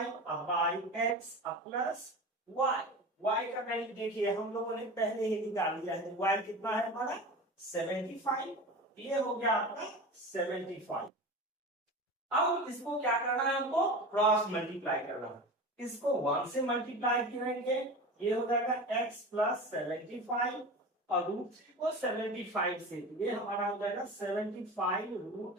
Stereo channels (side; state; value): both; normal; correlation 0.31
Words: by x plus y। y का वैल्यू देखिए हम लोगों ने पहले ही निकाल लिया है। y कितना है हमारा? 75। ये हो गया आपका 75। अब इसको क्या करना है? हमको क्रॉस मल्टीप्लाई करना है। इसको 1 से मल्टीप्लाई करेंगे, ये हो जाएगा x प्लस 75 और √3 को 75 से, ये हमारा हो जाएगा